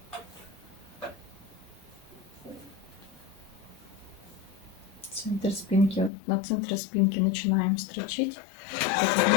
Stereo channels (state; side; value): drops out; right; at 6.1 s